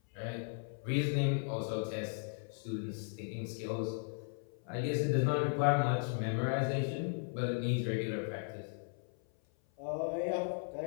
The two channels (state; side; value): silent; right; 53 dB below the other